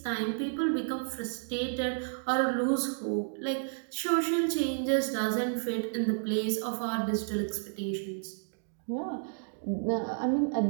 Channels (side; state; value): left; silent; digital silence